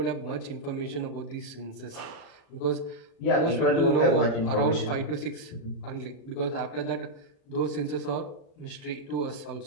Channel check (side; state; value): right; late; 36 ms